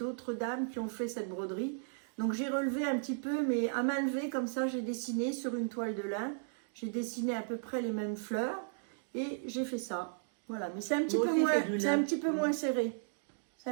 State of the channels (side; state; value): left; silent; digital silence